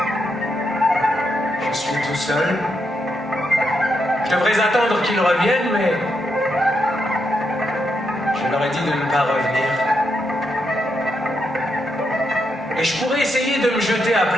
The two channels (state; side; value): normal; both; correlation 0.82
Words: Je suis tout seul. Je devrais attendre qu'ils reviennent, mais je Je leur ai dit de ne pas revenir. Et je pourrais essayer de me jeter à